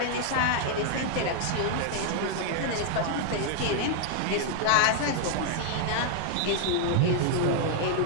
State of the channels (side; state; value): both; different; correlation 0.00